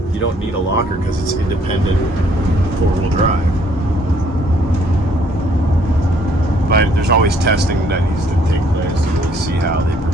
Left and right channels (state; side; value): normal; both; correlation 0.64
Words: you don't need a locker because it's independent four-wheel drive. But there's always testing that needs to take place to really see how they